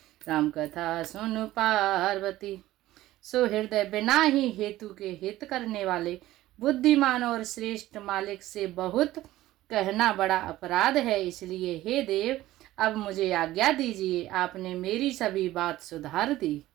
राम कथा सुन पार्वती। सुहृदय बिना ही हेतु के हित करने वाले बुद्धिमान और श्रेष्ठ मालिक से बहुत कहना बड़ा अपराध है, इसलिए हे देव अब मुझे आज्ञा दीजिए, आपने मेरी सभी बात सुधार दी।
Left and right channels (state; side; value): quieter; left; 15.7 dB